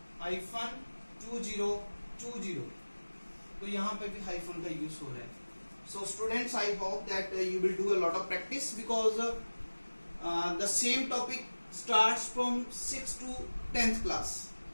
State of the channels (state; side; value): inverted; both; correlation -1.00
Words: तो यहाँ पे भी हाइफन का यूज हो रहा है। So students, I hope that you will do a lot of practice because the same topic starts from 6th to 10th class.